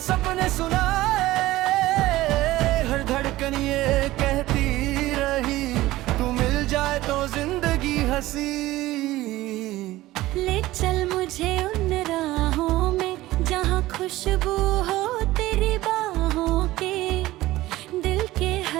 सुनाए, हर धड़कन ये कहती रही, तू मिल जाए तो जिंदगी हंसी। ले चल मुझे उन राहों में जहाँ खुशबू हो तेरी बाहों के, दिल के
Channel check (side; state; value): left; quieter; 17.1 dB